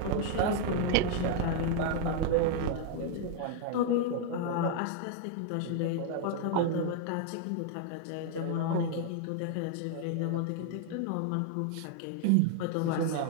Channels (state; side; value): different; both; correlation 0.00